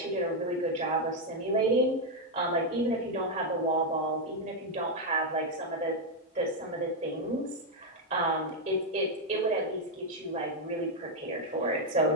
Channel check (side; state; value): both; normal; correlation 0.01